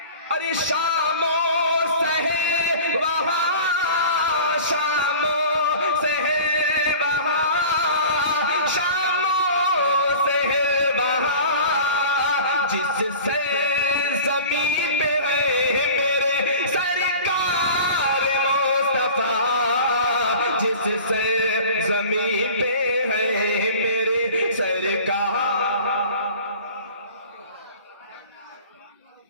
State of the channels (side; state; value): both; inverted; correlation -0.41